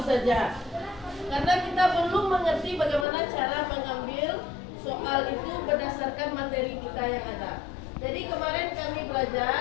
karena kita belum mengerti bagaimana cara mengambil soal itu berdasarkan materi kita yang ada. Jadi kemarin kami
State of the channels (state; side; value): drops out; right; at 3.1 s